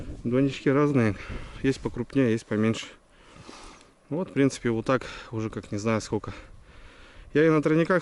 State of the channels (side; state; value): both; identical; correlation 1.00